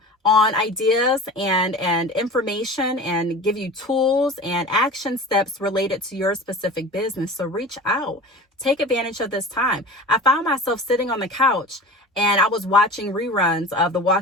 on ideas and information, and give you tools and action steps related to your specific business. So reach out. Take advantage of this time. I found myself sitting on the couch and I was watching reruns of The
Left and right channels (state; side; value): normal; both; correlation 0.36